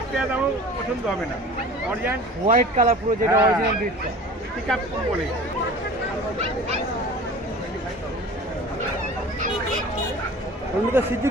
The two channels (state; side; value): normal; both; correlation 0.41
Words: টাকা দামও পছন্দ হবে না। অরিজিনাল হোয়াইট কালার পুরো, যেটা অরিজিনাল ব্রিডটা পিকআপ বলে। ওগুলো সিদ্ধু